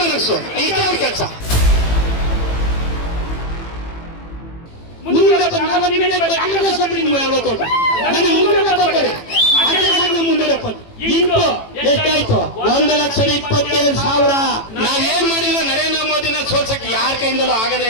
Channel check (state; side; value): late; right; 18 ms